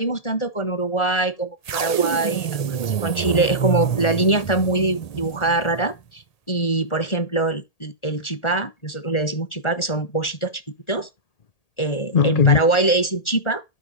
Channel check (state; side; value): late; right; 1.8 ms